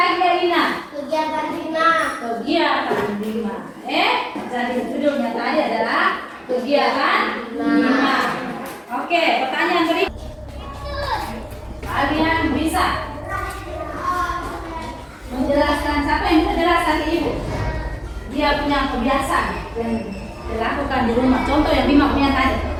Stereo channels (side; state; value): both; identical; correlation 1.00